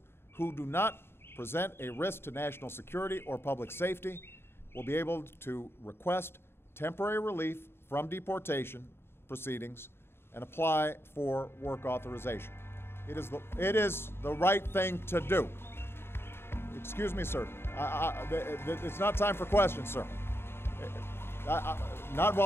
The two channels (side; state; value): right; late; 0.11 ms